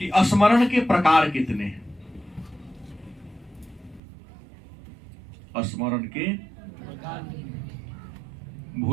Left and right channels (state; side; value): drops out; left; at 4.0 s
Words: स्मरण के प्रकार कितने हैं? स्मरण के